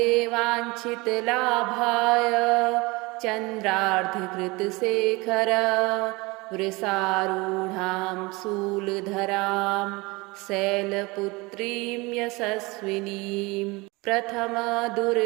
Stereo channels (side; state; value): left; quieter; 24.4 dB